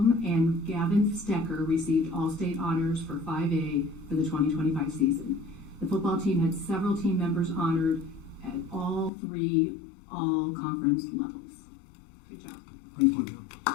and Gavin Stecker received All-State Honors for 5A for the 2025 season. The football team had several team members honored at all 3 all-conference levels. Good job. Thank you.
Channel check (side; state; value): right; drops out; at 9.1 s